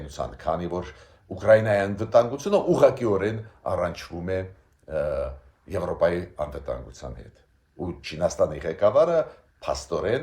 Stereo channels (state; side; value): identical; both; correlation 1.00